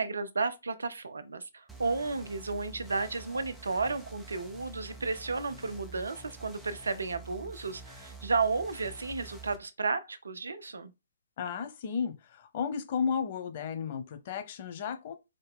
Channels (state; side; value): inverted; both; correlation -0.76